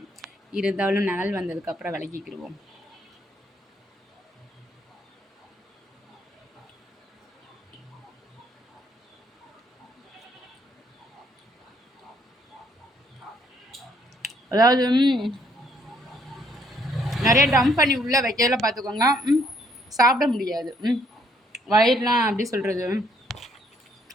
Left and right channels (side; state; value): both; normal; correlation 0.67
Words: இருந்தாலும் நிழல் வந்ததுக்கப்புறம் விலகிக்கிடுவோம். அதாவது நிறைய டம்ப் பண்ணி உள்ளே வைக்கல பார்த்துக்கோங்க. சாப்பிட முடியாது. வயிறுலாம் எப்படி சொல்கிறது,